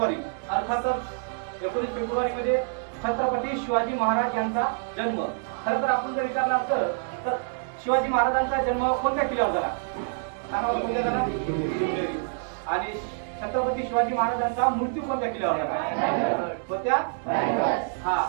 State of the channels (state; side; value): silent; left; digital silence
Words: अर्थातच 19 फेब्रुवारी म्हणजे छत्रपती शिवाजी महाराज यांचा जन्म. खरं तर आपण जर विचारलं असतं तर शिवाजी महाराजांचा जन्म कोणत्या किल्ल्यावर झाला सांगा बरं, कोणत्या झाला? शिवनेरी. आणि छत्रपती शिवाजी महाराजांचा मृत्यू कोणत्या किल्ल्यावर झाला? कोणत्या? हा,